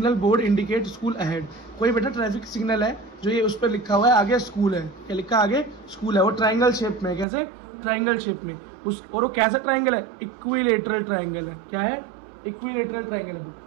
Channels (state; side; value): drops out; left; at 7.2 s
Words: board indicate school ahead. कोई बेटा ट्रैफिक सिग्नल है जो ये उस पर लिखा हुआ है आगे स्कूल है, क्या लिखा है आगे स्कूल है, वो ट्राइंगल शेप में है। कैसे? ट्राइंगल शेप में। उस और वो कैसा ट्राइंगल है? इक्विलेटरल ट्राइंगल है। क्या है? इक्विलेटरल ट्राइंगल है।